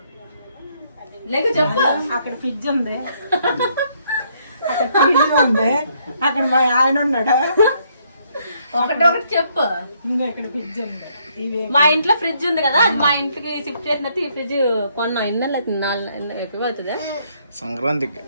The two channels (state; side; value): inverted; both; correlation -0.70